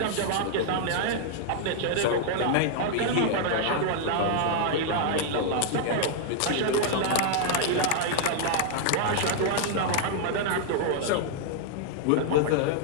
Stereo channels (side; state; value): both; different; correlation -0.01